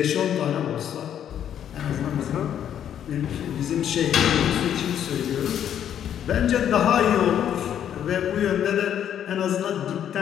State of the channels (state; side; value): quieter; right; 9.7 dB